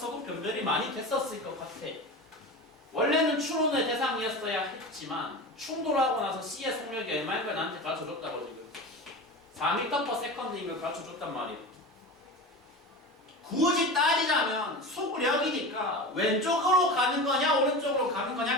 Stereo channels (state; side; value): normal; both; correlation 0.29